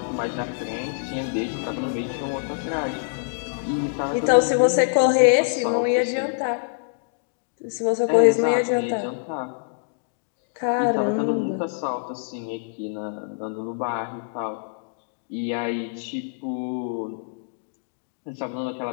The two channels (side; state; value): right; silent; digital silence